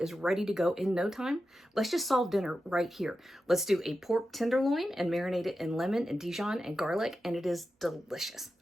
ready to go in no time? Let's just solve dinner right here. Let's do a pork tenderloin and marinate it in lemon and Dijon and garlic, and it is delicious.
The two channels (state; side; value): normal; both; correlation 0.91